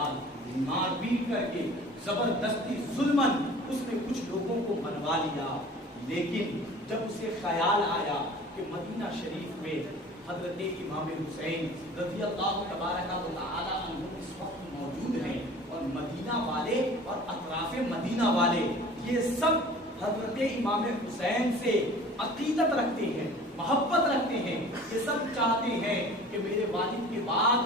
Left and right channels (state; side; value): normal; both; correlation 0.44